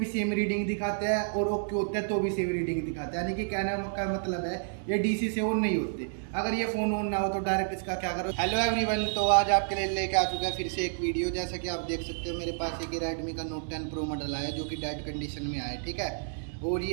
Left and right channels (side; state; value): left; silent; digital silence